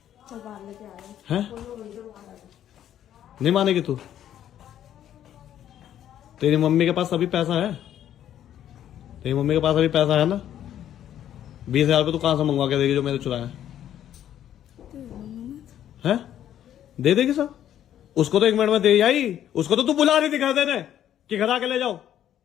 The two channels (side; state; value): right; quieter; 10.9 dB